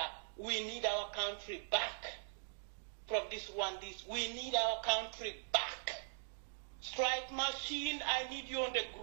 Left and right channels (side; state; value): left; silent; digital silence